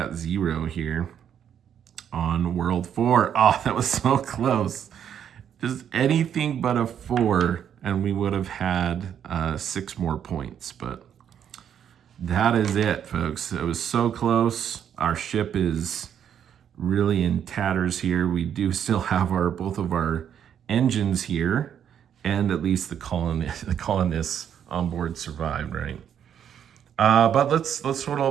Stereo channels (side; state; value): left; quieter; 9.0 dB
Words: 0 here on World 4. Oh, that was so close. Just anything but a 4, and we would have had 6 more points. But that is it, folks. It was so close. Our ship is really in tatters here. We do still have both of our engines here, and at least the colonists on board survived, right? But let's total